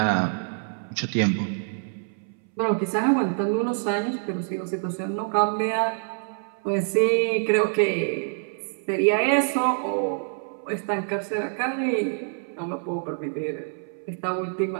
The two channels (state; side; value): silent; left; 61 dB below the other